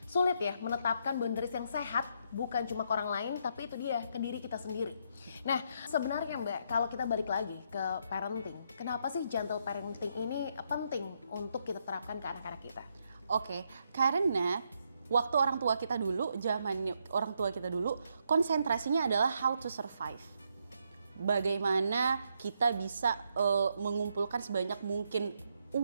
sulit ya menetapkan boundaries yang sehat, bukan cuma ke orang lain tapi itu dia ke diri kita sendiri. Nah sebenarnya Mbak, kalau kita balik lagi ke parenting, kenapa sih gentle parenting ini penting untuk kita terapkan ke anak-anak kita? Oke, karena waktu orang tua kita dulu, zaman orang tua kita dulu, konsentrasinya adalah how to survive. Bagaimana kita bisa mengumpulkan sebanyak mungkin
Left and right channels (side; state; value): both; inverted; correlation -0.77